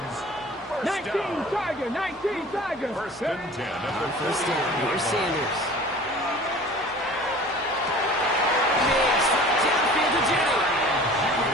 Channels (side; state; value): both; normal; correlation 0.44